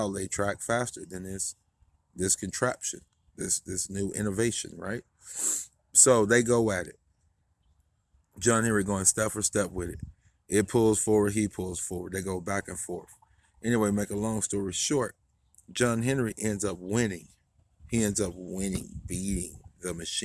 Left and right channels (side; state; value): both; identical; correlation 1.00